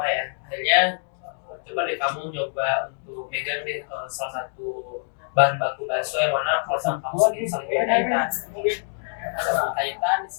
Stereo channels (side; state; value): right; silent; digital silence